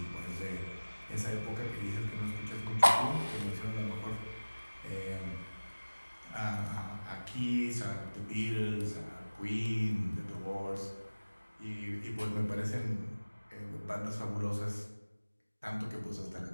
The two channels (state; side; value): inverted; both; correlation -1.00